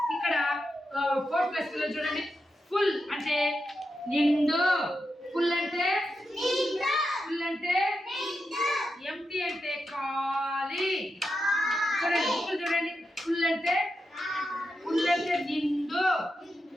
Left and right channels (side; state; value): both; normal; correlation 0.87